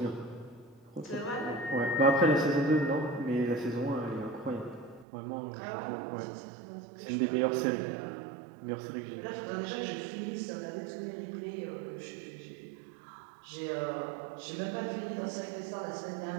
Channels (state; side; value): drops out; left; at 5.1 s